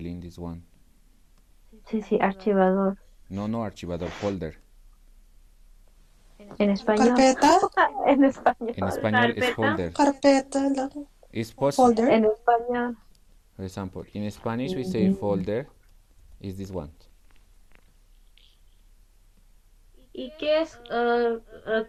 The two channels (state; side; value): identical; both; correlation 1.00